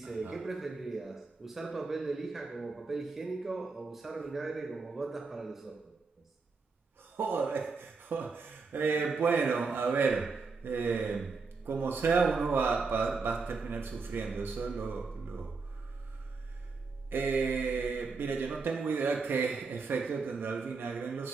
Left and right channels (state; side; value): quieter; left; 4.5 dB